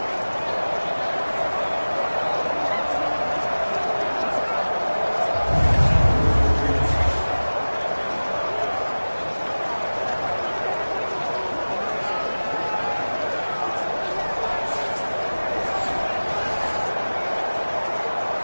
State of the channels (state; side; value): inverted; both; correlation -1.00